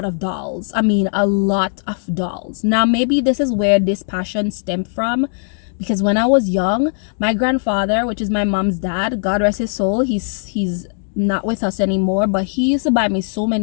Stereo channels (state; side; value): silent; right; 61 dB below the other